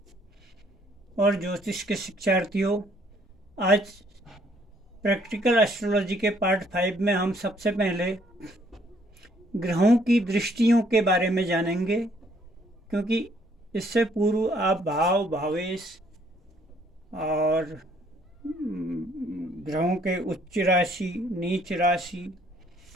और ज्योतिष के शिक्षार्थियों, आज प्रैक्टिकल एस्ट्रोलॉजी के पार्ट 5 में हम सबसे पहले ग्रहों की दृष्टियों के बारे में जानेंगे, क्योंकि इससे पूर्व आप भाव, भावेश और ग्रहों के उच्च राशि, नीच राशि,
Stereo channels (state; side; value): normal; both; correlation 0.65